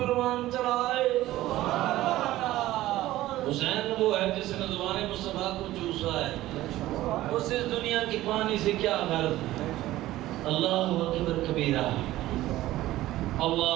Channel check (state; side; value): quieter; left; 15.8 dB